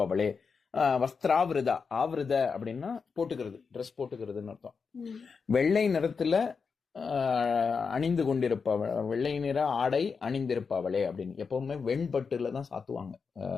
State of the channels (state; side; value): quieter; right; 5.4 dB